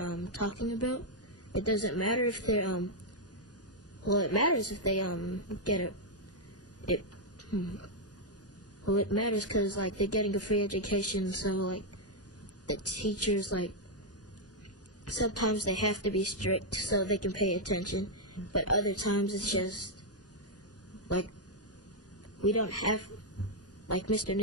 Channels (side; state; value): both; normal; correlation -0.02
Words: talking about. It doesn't matter if they're well, it matters if they get it. Well, it matters because like they're getting a free education, so like the teachers, like sometimes they have to be strict so they can pay attention, but other times it's just like we don't have, like Mr.